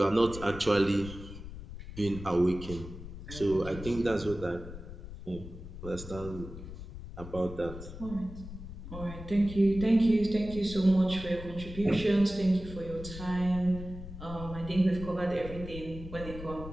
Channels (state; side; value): noise; left; rumble, 11 dB below the sound